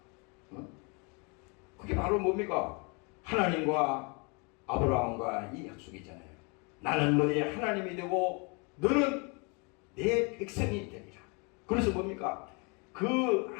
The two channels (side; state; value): right; quieter; 32.2 dB